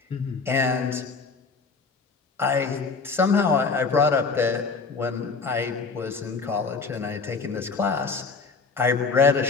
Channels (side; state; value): right; quieter; 4.6 dB